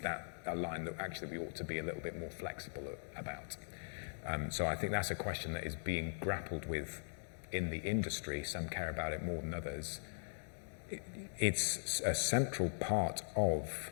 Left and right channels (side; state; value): right; silent; digital silence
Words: a line that actually we ought to be a little bit more flexible about? So I think that's a question that is being grappled with in the industry. Some care about it more than others. It's a central part of